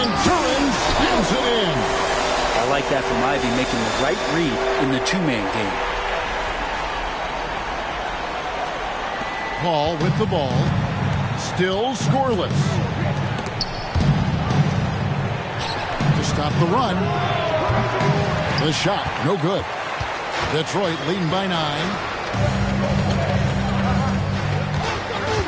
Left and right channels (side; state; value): both; identical; correlation 1.00